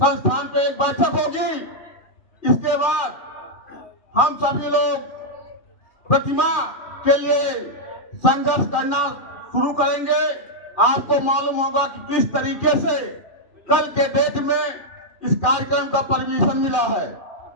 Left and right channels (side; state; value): right; late; 2.4 ms